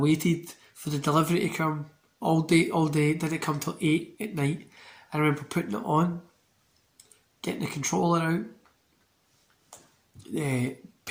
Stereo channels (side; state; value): both; identical; correlation 1.00